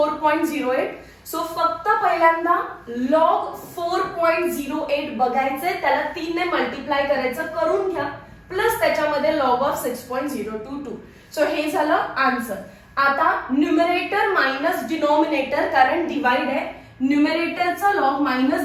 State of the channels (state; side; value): identical; both; correlation 1.00